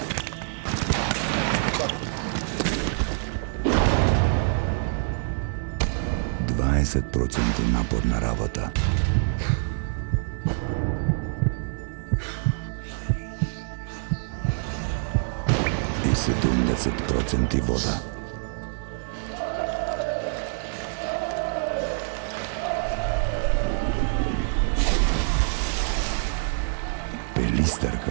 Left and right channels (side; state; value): left; silent; digital silence